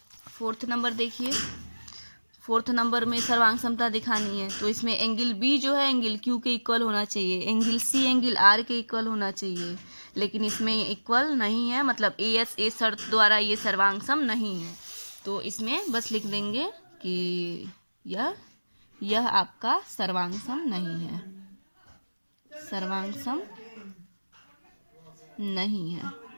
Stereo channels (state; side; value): inverted; both; correlation -1.00